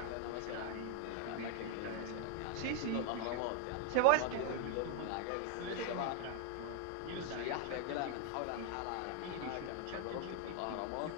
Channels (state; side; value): different; both; correlation 0.00